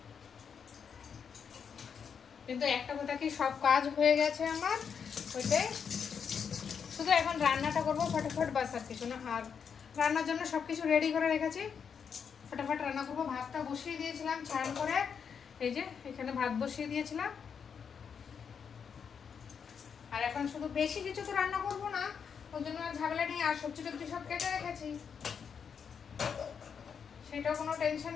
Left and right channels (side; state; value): right; quieter; 6.8 dB